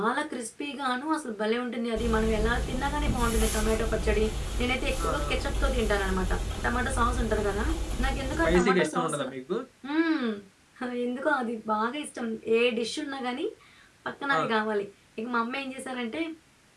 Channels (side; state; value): both; identical; correlation 1.00